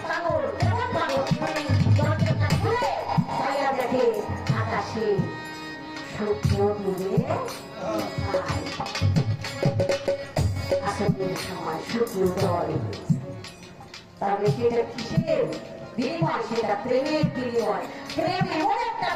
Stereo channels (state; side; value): identical; both; correlation 1.00